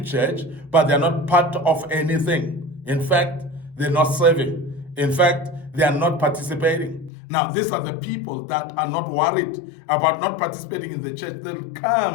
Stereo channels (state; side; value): drops out; right; at 7.1 s